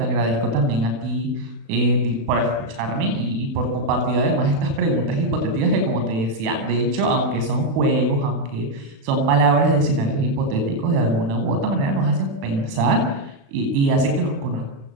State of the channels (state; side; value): late; left; 36 ms